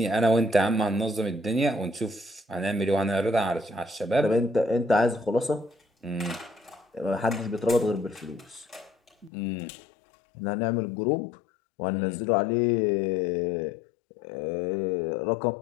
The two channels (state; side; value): drops out; right; at 9.3 s